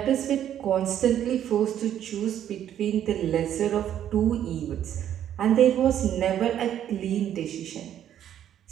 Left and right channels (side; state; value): left; quieter; 10.5 dB